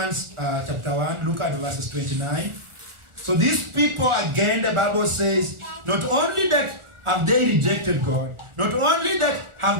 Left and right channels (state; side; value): late; left; 1.4 ms